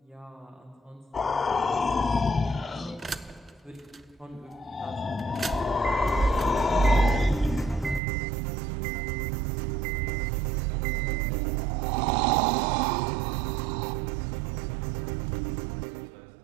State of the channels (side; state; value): left; drops out; at 8.0 s